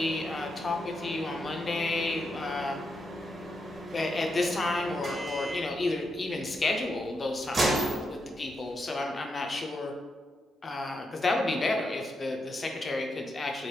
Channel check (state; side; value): normal; both; correlation 0.83